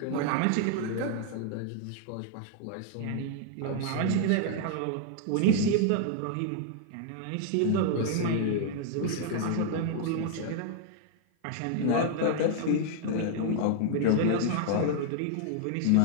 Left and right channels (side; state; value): both; different; correlation 0.00